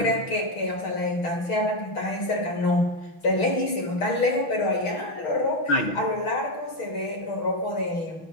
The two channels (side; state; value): right; late; 6.1 ms